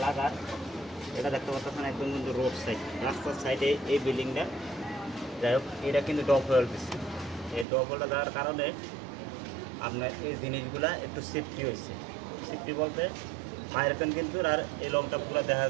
লাগার এটা দেখতে পাচ্ছেন একদম কিন্তু রোড সাইড, রাস্তার সাইডে এই বিল্ডিংটা। যাই হোক, এটা কিন্তু ডব হোয়েল দিচ্ছে। এই ডব হোয়েলটা দেওয়ার কারণে আপনার এই জিনিসগুলা একটু সেফটি হয়েছে। সেফটি বলতে বাইরেখান কিন্তু আর এই লং টাপগুলো দেখা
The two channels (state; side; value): drops out; left; at 7.7 s